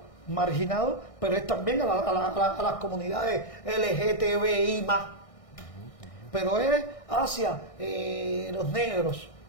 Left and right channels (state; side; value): late; right; 1.6 ms